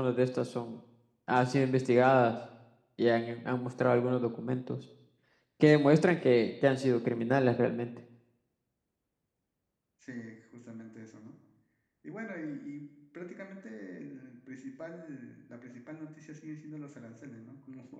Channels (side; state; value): both; identical; correlation 1.00